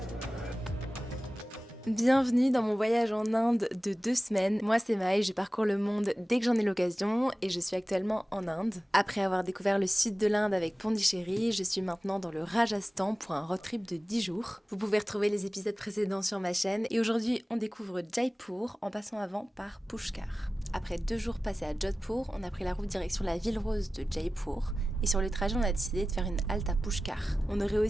Bienvenue dans mon voyage en Inde de 2 semaines. Moi c'est Maë, je parcours le monde dès que j'en ai l'occasion et je suis actuellement en Inde. Après avoir découvert le sud de l'Inde avec Pondichéry, je suis maintenant dans le Rajasthan pour un road trip de 10 jours. Vous pouvez retrouver les épisodes précédents sur ma chaîne et aujourd'hui on découvre Jaipur en passant avant par Pushkar. Après 2 jours passés à Jodhpur, on a pris la route direction la ville rose de Jaipur et sur le trajet on a décidé de faire une halte à Pushkar. On aurait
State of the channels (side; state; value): both; normal; correlation 0.96